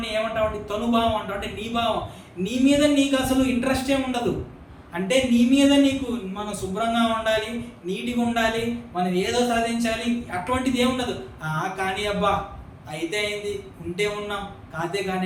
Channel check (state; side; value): identical; both; correlation 1.00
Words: ఏమంటామంటే తనుభావం అంటాం, అంటే నీ భావం, నీ మీద నీకు అసలు ఇంట్రెస్ట్ ఏమి ఉండదు. అంటే నీ మీద నీకు మనం శుభ్రంగా ఉండాలి, నీట్గా ఉండాలి, మనం ఏదో సాధించాలి, అటువంటిది ఏముండదు. కానీ అబ్బా అయితే అయింది, ఉంటే ఉన్నాం, కాతే